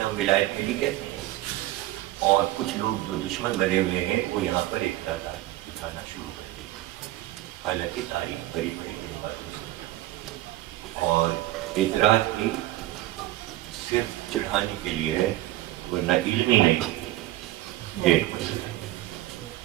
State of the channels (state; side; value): quieter; left; 16.1 dB